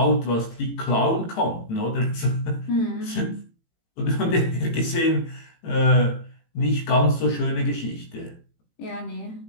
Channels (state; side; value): late; right; 18 ms